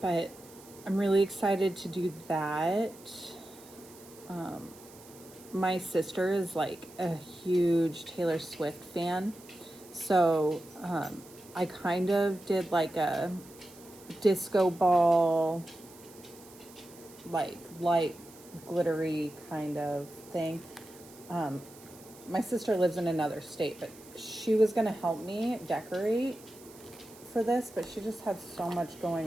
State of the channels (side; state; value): right; noise; hiss, 21 dB below the sound